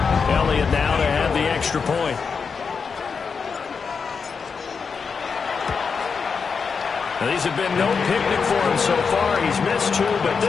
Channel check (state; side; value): quieter; right; 5.6 dB